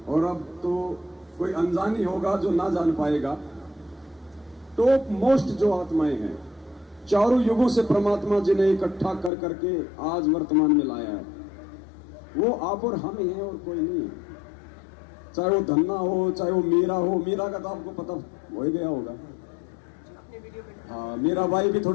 और अब तो कोई अनजान ही होगा जो ना जान पाएगा। टॉप मोस्ट जो आत्माएं हैं, चारों युगों से परमात्मा जी ने इकट्ठा कर करके आज वर्तमान में लाया है, वो आप और हम ही हैं और कोई नहीं है। चाहे वो धन्ना हो, चाहे वो मीरा हो, मीरा का तो आपको पता हो ही गया होगा। हाँ, मीरा बाई भी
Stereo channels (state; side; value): drops out; right; at 9.3 s